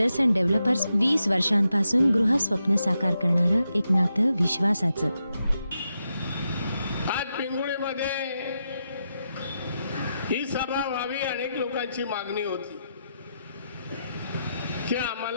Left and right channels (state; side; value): inverted; both; correlation -0.85